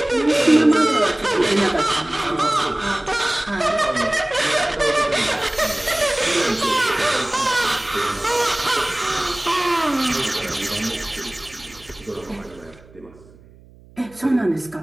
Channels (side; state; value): right; noise; hum, 24 dB below the sound